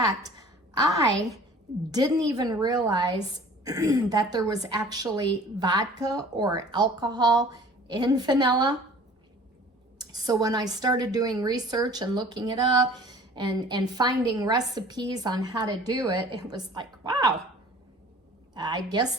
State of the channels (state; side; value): normal; both; correlation 0.48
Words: I didn't even realize that there was actually vodka or alcohol in vanilla. So when I started doing research and looking it up and finding recipes on how to do it, it was like, wow, I guess